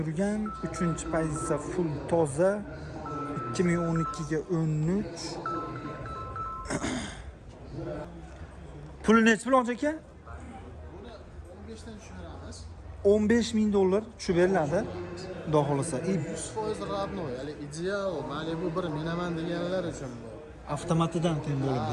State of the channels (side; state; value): both; identical; correlation 1.00